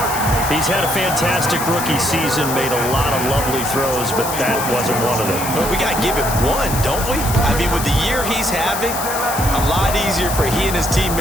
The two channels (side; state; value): left; noise; hiss, 6 dB below the sound